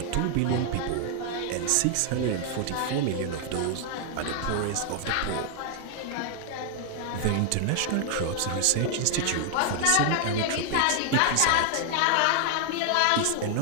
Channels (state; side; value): different; both; correlation 0.00